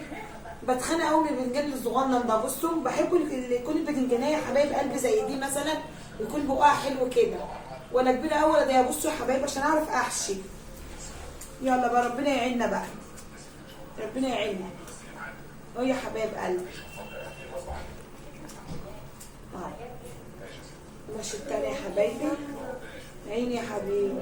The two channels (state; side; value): identical; both; correlation 1.00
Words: بتخانق قوي من الباذنجان الصغنن ده. بصوا بحب يكون الباذنجانيه يا حبايب قلبي زي دي مثلا، يكون بقها حلو كده، ولا كبيره قوي ولا ضيقه. بصوا يا حبايبي عشان اعرف احشي. يلا بقى ربنا يعيننا بقى، ربنا يعيننا اهو يا حبايب قلبي. ماشي التاني يا حبايبي. عيني يا حبيبي.